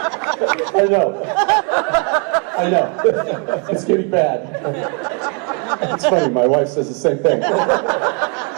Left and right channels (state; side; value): quieter; left; 36.3 dB